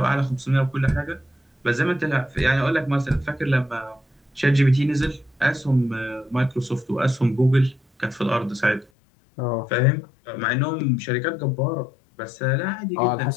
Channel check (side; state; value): right; drops out; at 8.8 s